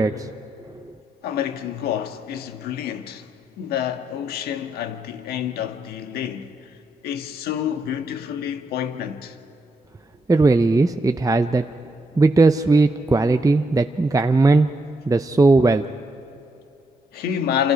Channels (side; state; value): both; normal; correlation 0.79